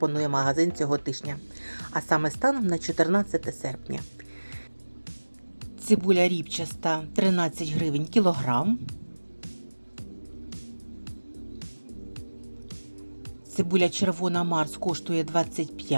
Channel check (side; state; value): both; inverted; correlation -1.00